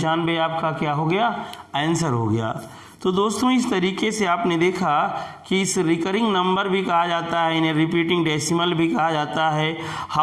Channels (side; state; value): both; identical; correlation 1.00